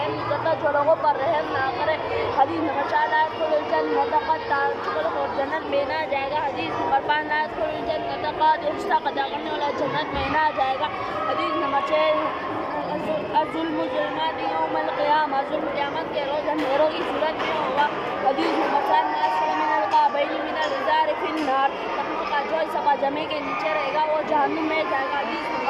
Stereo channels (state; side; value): identical; both; correlation 1.00